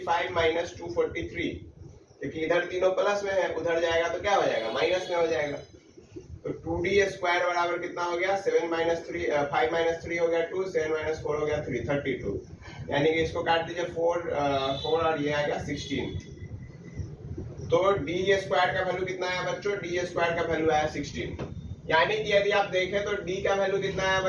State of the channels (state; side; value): identical; both; correlation 1.00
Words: माइनस 243, क्योंकि इधर तीनों प्लस में है, उधर जाएगा तो क्या हो जाएगा माइनस में हो जाएगा। तो 2d स्क्वायर बराबर कितना हो गया 7 माइनस 3 5 माइनस 3 हो गया 2, 7 माइनस 4 हो गया 3, 32। यानी कि इसको काट दीजिए 4 और ये आएगा 16। तो d स्क्वायर का वैल्यू कितना आया बच्चों, d स्क्वायर का वैल्यू आया 16। यानी कि यदि आप देखें तो d का वैल्यू कितना आया